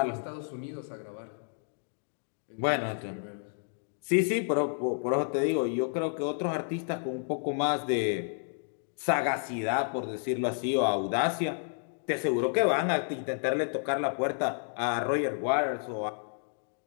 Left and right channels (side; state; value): right; silent; digital silence